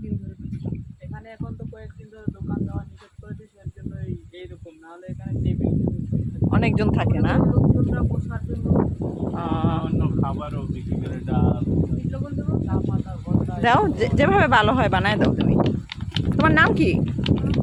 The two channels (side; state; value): both; identical; correlation 1.00